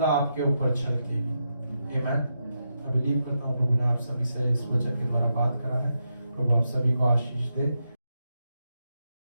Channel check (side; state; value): both; inverted; correlation -0.84